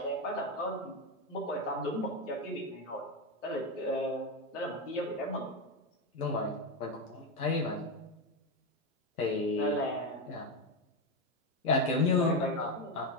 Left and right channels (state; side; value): normal; both; correlation 0.11